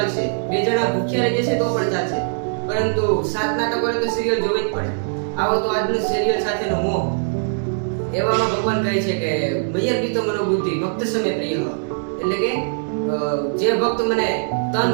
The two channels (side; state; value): left; silent; digital silence